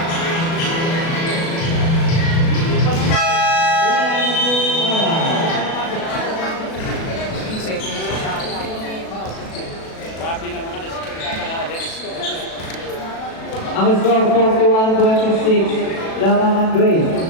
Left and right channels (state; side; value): late; right; 37 ms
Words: Ang score 41-26, Lamangan Grace.